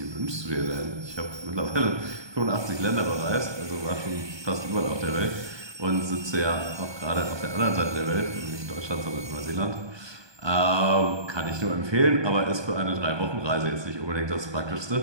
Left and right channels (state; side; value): late; left; 1.2 ms